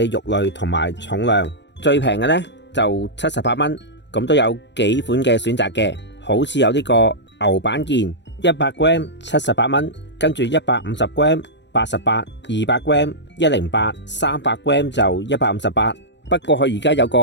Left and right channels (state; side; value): late; right; 0.52 ms